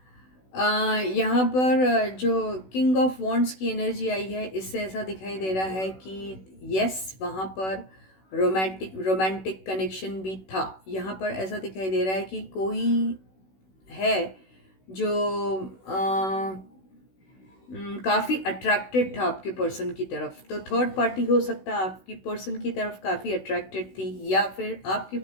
यहाँ पर जो किंग ऑफ वॉन्ड्स की एनर्जी आई है, इससे ऐसा दिखाई दे रहा है कि यस, वहाँ पर रोमांटिक कनेक्शन भी था। यहाँ पर ऐसा दिखाई दे रहा है कि कोई है जो काफ़ी अट्रैक्टेड था आपके पर्सन की तरफ, तो थर्ड पार्टी हो सकता है आपकी पर्सन की तरफ काफ़ी अट्रैक्टेड थी, या फिर आपके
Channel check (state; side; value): late; right; 16 ms